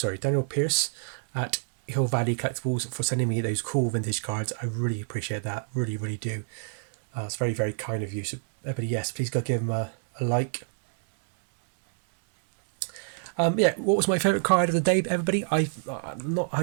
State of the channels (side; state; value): left; silent; digital silence